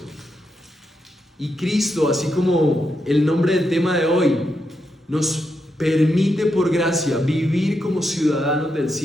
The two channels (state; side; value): normal; both; correlation 0.84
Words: Y Cristo, así como el nombre del tema de hoy, nos permite por gracia vivir como ciudadanos del